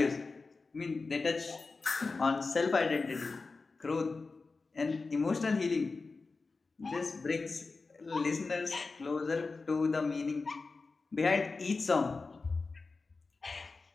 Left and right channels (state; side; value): quieter; right; 4.0 dB